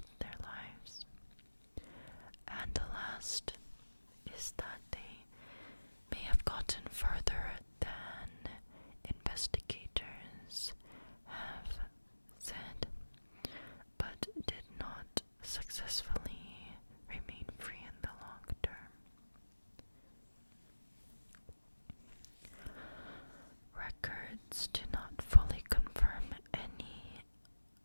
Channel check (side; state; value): both; inverted; correlation -1.00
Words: their lives. And the last is that they may have gotten further than investigators have said, but did not successfully remain free in the long term. Records do not fully confirm any